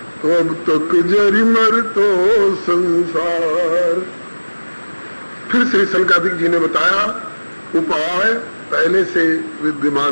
तो अब तक जरी मर तो संसार। फिर श्री सनकादिक जी ने बताया उपाय पहले से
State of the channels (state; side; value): inverted; both; correlation -1.00